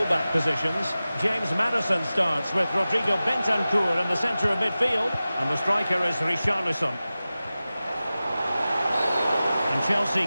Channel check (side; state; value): both; inverted; correlation -0.96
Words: positions. James Maddison starts with Rodrigo Bentancur in the centre of midfield. And the striker is Richarlison. And Chelsea